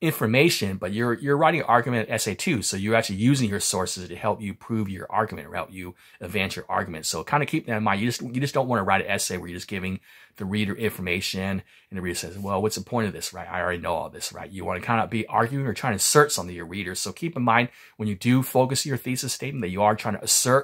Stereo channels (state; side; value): identical; both; correlation 1.00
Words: information, but you're writing an argument essay too. So you're actually using your sources to help you prove your argument, or help you advance your argument. So kind of keep that in mind. You just don't want to write an essay where you're just giving the reader information, and the reader says, well, what's the point of this, right? I already know all this, right? You want to kind of be arguing or trying to assert something to your readers. So keep in mind, when you do focus your thesis statement, that you are trying to